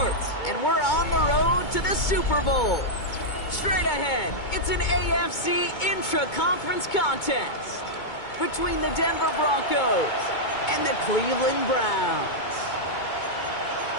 and we're on the road to the Super Bowl. Straight ahead, it's an AFC intra-conference contest between the Denver Broncos and the Cleveland Browns.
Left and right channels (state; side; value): late; right; 2.2 ms